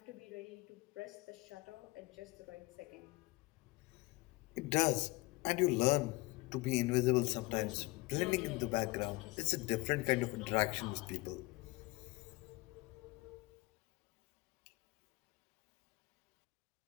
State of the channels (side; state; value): right; quieter; 22.4 dB